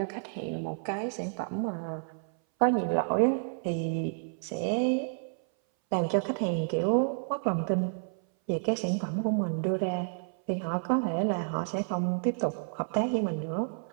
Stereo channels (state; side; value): silent; left; 58 dB below the other